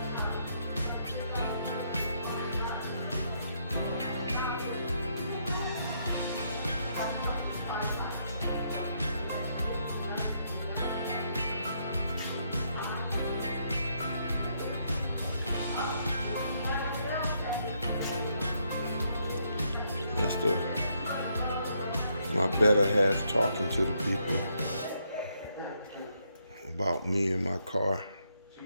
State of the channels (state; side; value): inverted; both; correlation -0.75